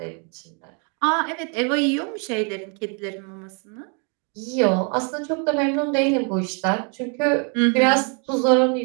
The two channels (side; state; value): left; quieter; 38.1 dB